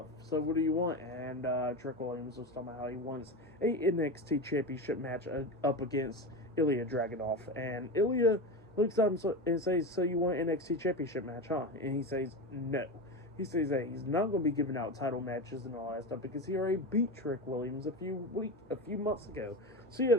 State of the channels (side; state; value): both; normal; correlation 0.22